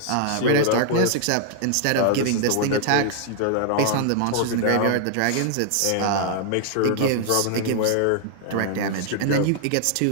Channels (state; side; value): different; both; correlation -0.01